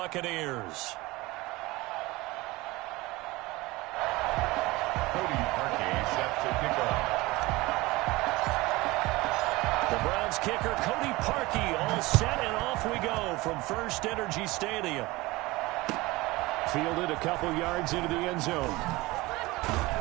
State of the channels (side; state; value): left; quieter; 21.1 dB